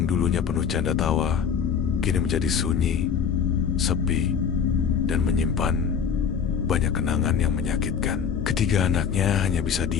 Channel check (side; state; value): right; quieter; 7.1 dB